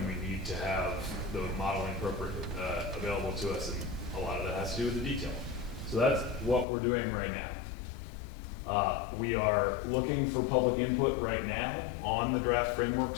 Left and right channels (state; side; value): drops out; right; at 6.7 s